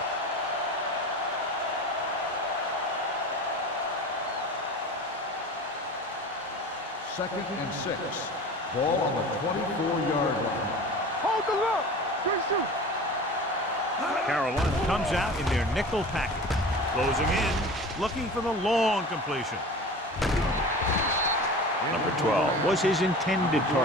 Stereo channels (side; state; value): both; normal; correlation 0.36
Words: Second and 6. Ball on the 24-yard line. Hold the look. Good shoot. Carolina comes out in their nickel package. Closing in, looking for the long completion. Number 12 was his intended